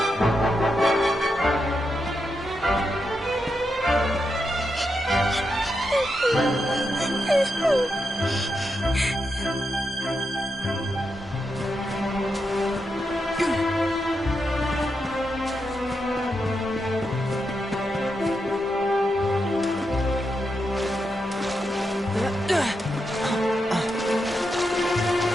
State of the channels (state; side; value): normal; both; correlation 0.85